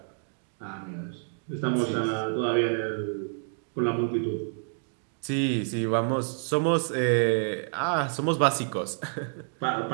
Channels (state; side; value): silent; left; digital silence